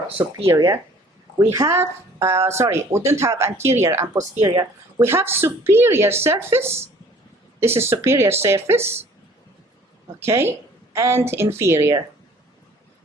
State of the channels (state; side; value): normal; both; correlation 0.53